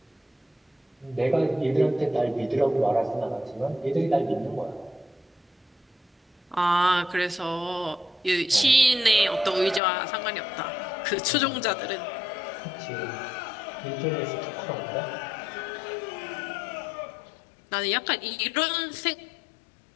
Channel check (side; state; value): right; drops out; at 9.8 s